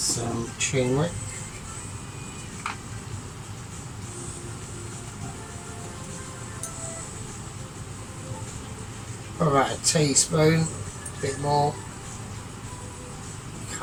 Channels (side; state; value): both; identical; correlation 1.00